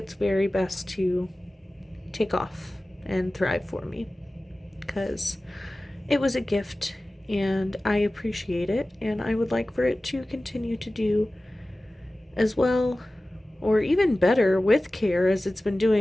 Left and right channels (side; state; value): both; normal; correlation 0.97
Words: very best to take off and thrive for me, because it was a gift and I appreciate it, and I would like for it to continue to do as well or even better with care as it's been